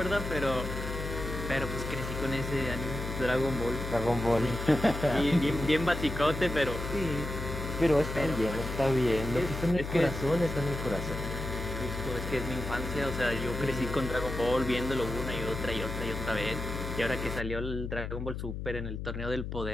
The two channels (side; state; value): left; noise; hum, 5 dB below the sound